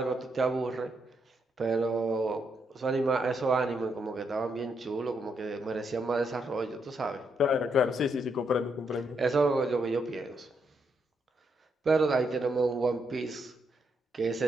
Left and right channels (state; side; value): normal; both; correlation 0.78